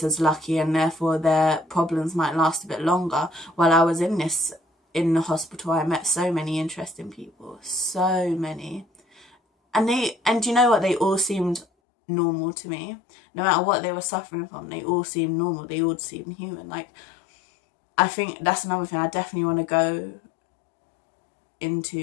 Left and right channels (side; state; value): right; drops out; at 11.7 s